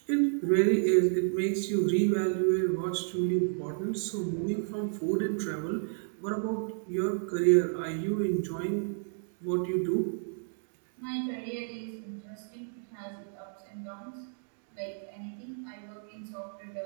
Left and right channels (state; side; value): silent; left; digital silence